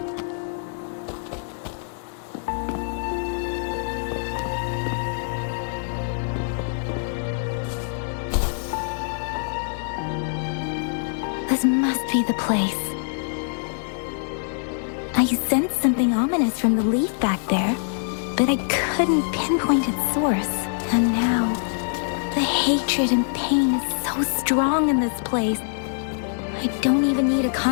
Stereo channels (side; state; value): right; silent; 62 dB below the other